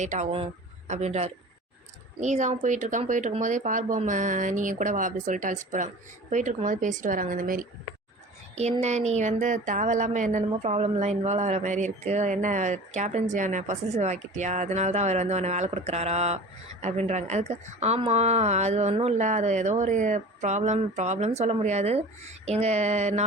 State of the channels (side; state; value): both; normal; correlation 0.39